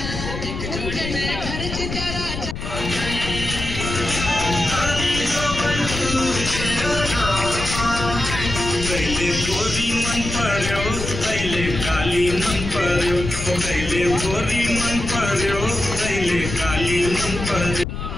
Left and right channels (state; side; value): noise; left; rumble, 6 dB below the sound